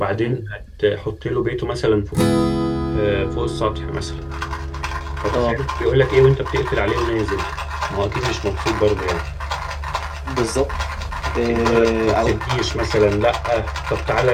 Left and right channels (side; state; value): both; identical; correlation 1.00